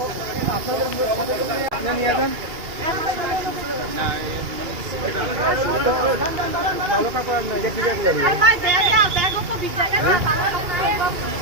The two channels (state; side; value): late; left; 2.3 ms